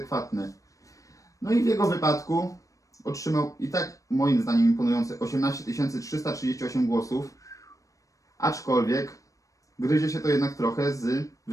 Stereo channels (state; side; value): late; right; 0.16 ms